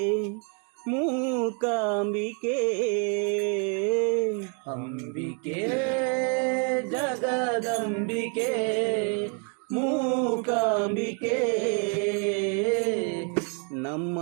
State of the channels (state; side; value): quieter; left; 37.0 dB